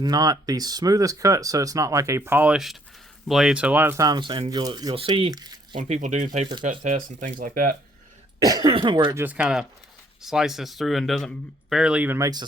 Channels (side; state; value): both; normal; correlation 0.65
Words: the smoothest cut, so it's not like a polished blade. So a lot of times, and you'll see when people do paper cut tests and things like that, where it just kind of slices through and doesn't barely even makes a